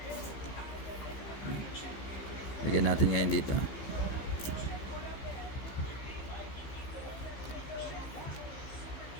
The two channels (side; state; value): right; late; 15 ms